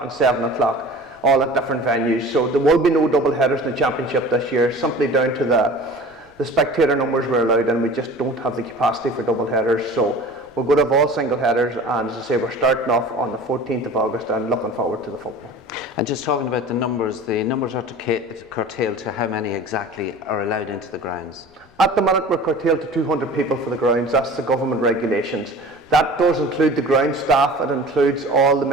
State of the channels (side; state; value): left; noise; rumble, 29 dB below the sound